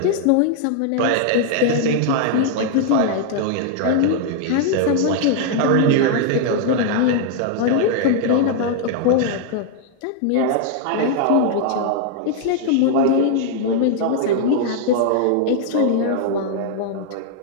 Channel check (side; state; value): both; different; correlation 0.00